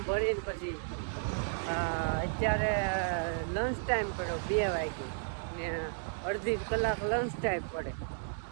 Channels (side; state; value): left; silent; digital silence